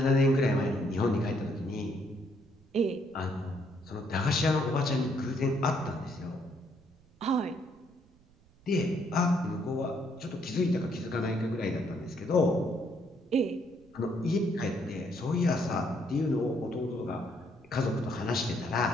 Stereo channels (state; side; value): noise; right; rumble, 29 dB below the sound